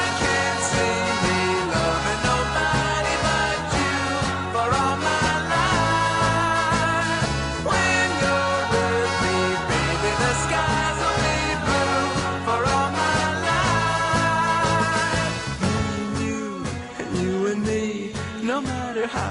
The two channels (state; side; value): identical; both; correlation 1.00